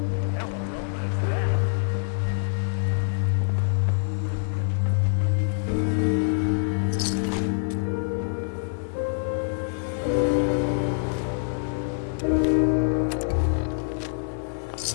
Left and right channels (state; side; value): silent; right; digital silence